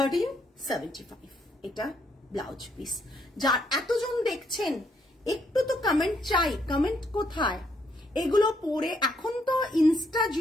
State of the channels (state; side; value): normal; both; correlation 0.73